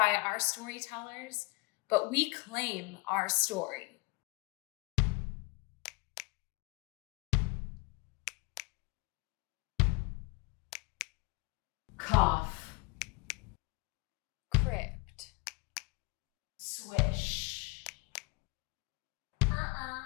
our storytellers, but we claim our story. Cough. Crypt. Swish.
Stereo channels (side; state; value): right; quieter; 26.3 dB